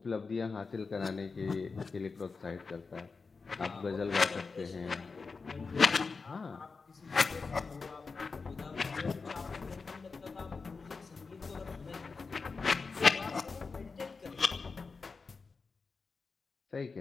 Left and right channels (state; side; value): quieter; right; 4.6 dB